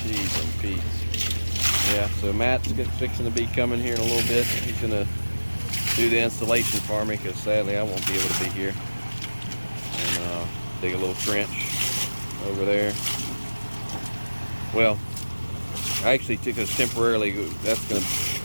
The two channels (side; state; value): both; inverted; correlation -1.00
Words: I'm Yeah, so Matt's fixing to be coming here in a little bit. He's gonna do the installation for me because sadly I won't be able to be here. And dig a little trench over there. Well, I actually took us temporarily. That's gonna